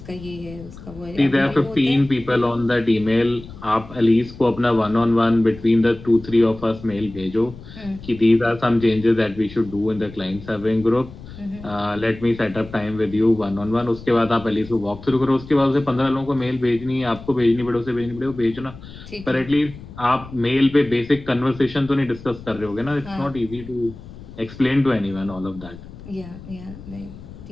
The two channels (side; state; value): left; noise; rumble, 16 dB below the sound